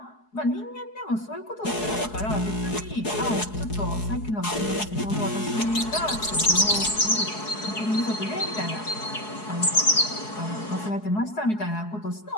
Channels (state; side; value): late; right; 4.7 ms